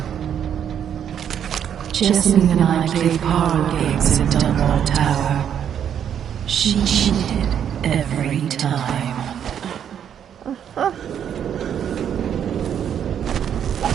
Jessamine and I played parlor games in Dunwall Tower. She cheated every time.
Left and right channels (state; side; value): quieter; left; 8.9 dB